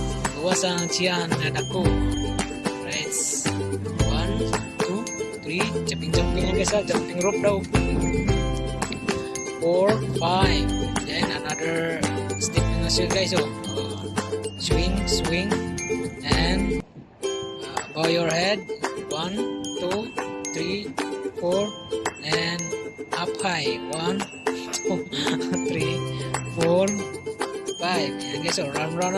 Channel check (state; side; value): identical; both; correlation 1.00